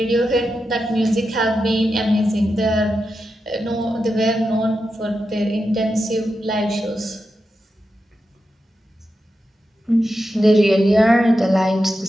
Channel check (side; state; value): both; normal; correlation 0.89